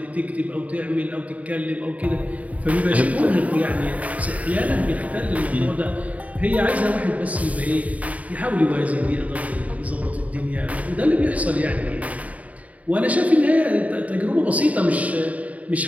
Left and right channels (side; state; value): left; late; 0.070 ms